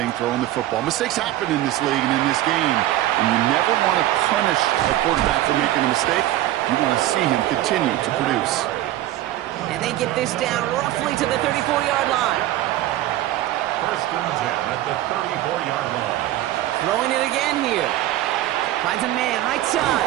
throwing the football. Mistakes happen in this league and in this game. And you never want to punish a quarterback for making a mistake. You want to see him continue to produce. And they get this down roughly to the 34-yard line. First and 10 at the 34-yard line. Throwing it again here. Finds a man, right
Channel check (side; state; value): left; quieter; 14.5 dB